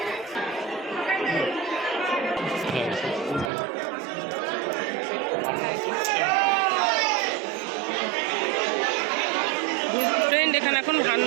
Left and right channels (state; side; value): drops out; left; at 3.5 s